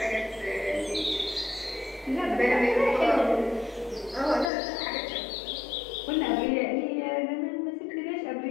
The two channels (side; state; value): right; drops out; at 4.5 s